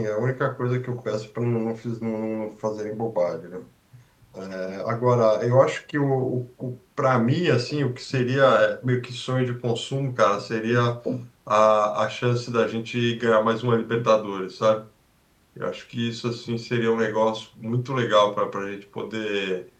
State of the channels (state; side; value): identical; both; correlation 1.00